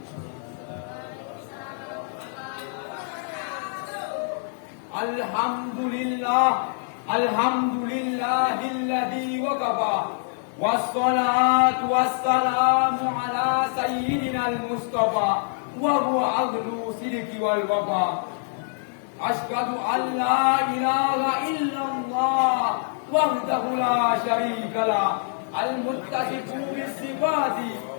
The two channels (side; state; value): right; silent; digital silence